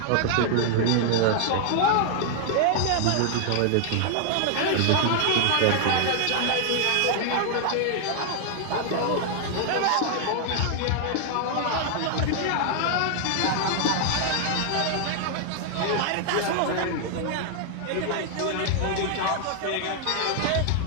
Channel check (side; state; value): both; different; correlation 0.00